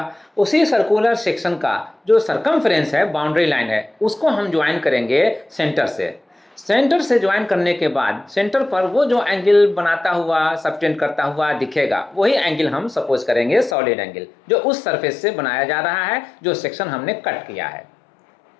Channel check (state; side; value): drops out; right; at 13.8 s